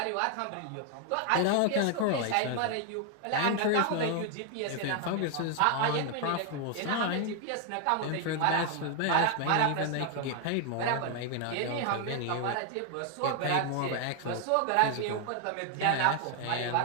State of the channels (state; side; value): different; both; correlation 0.00